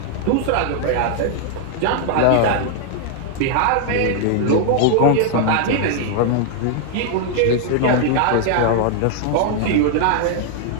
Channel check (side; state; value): both; different; correlation 0.00